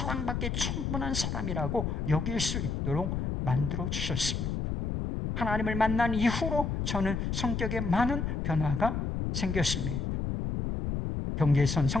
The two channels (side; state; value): left; noise; rumble, 1 dB below the sound